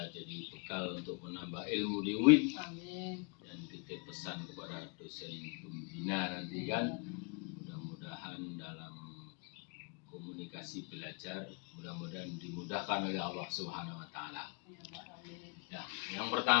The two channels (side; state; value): right; quieter; 34.7 dB